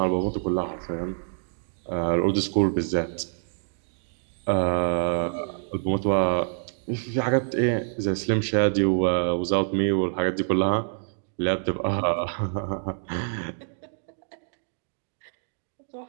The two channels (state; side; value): silent; left; digital silence